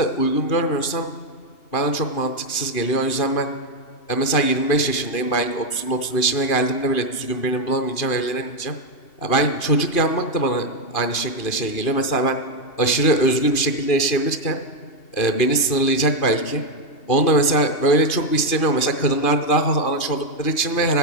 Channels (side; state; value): right; late; 2.5 ms